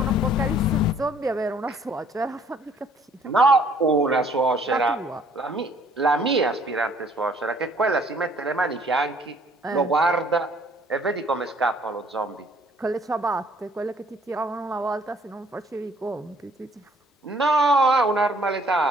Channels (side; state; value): both; normal; correlation 0.60